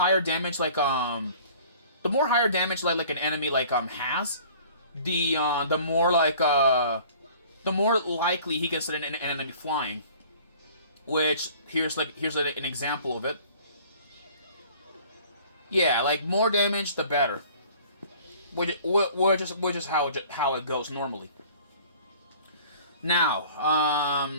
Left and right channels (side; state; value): both; inverted; correlation -0.50